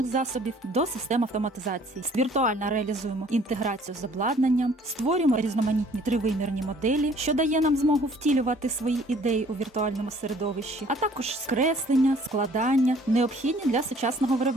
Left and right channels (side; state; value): both; normal; correlation 0.56